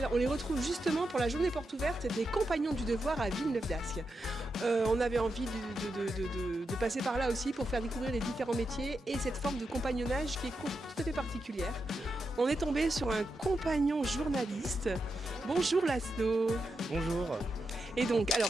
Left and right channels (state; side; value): normal; both; correlation 0.87